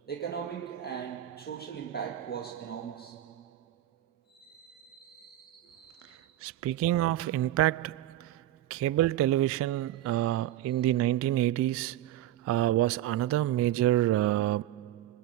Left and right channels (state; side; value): quieter; left; 13.4 dB